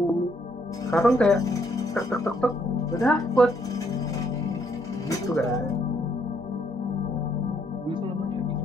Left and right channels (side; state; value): both; normal; correlation 0.71